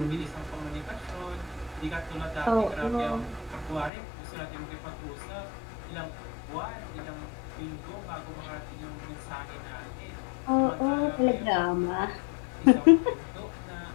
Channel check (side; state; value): right; drops out; at 3.9 s